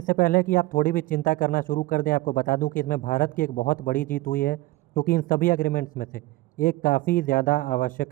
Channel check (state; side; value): quieter; left; 18.9 dB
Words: पहले कि आप थोड़ी भी चिंता करना शुरू कर दें, आपको बता दूं कि इसमें भारत की एक बहुत बड़ी जीत हुई है, क्योंकि इन सभी एग्रीमेंट्स में से एक काफ़ी ज़्यादा आवश्यक